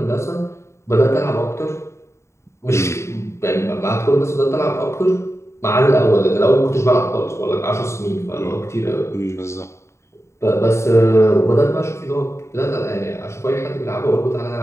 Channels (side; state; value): right; late; 0.14 ms